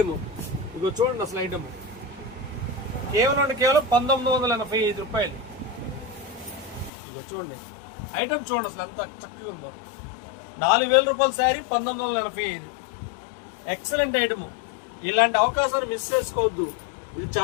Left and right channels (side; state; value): right; drops out; at 6.9 s